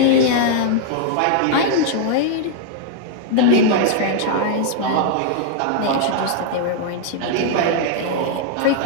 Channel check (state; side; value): different; both; correlation -0.01